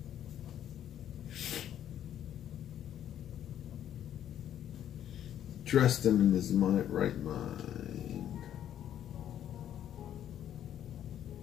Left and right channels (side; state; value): right; quieter; 10.6 dB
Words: Dressed him in his right mind.